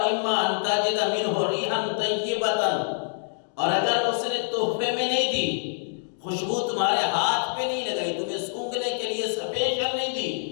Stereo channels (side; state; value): right; silent; 61 dB below the other